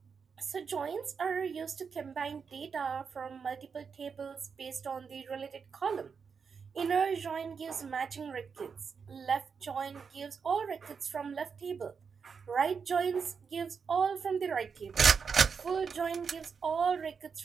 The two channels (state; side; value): quieter; left; 5.9 dB